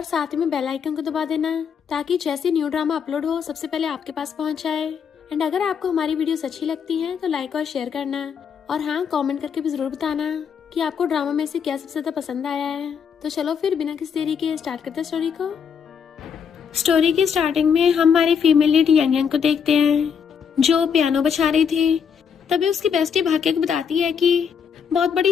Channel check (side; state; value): right; quieter; 7.0 dB